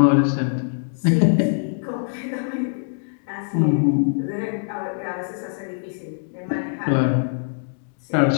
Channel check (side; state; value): right; silent; digital silence